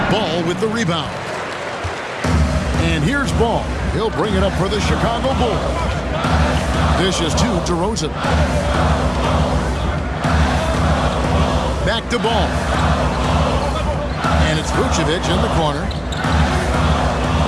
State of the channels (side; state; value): both; identical; correlation 1.00